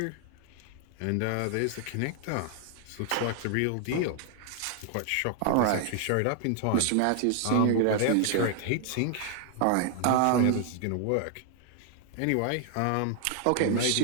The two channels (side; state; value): both; different; correlation 0.00